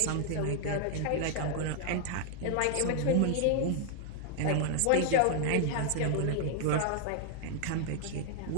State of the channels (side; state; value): both; different; correlation 0.00